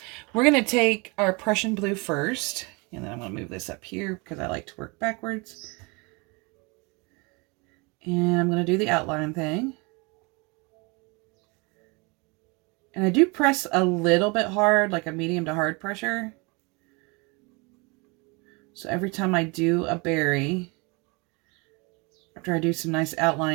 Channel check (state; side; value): quieter; left; 29.0 dB